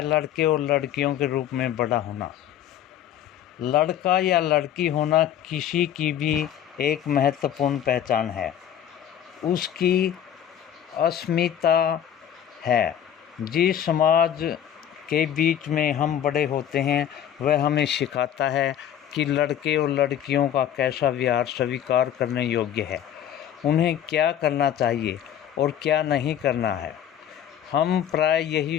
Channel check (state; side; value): quieter; right; 10.0 dB